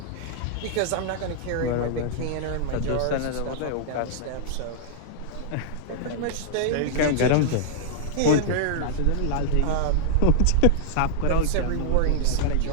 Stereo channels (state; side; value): different; both; correlation -0.01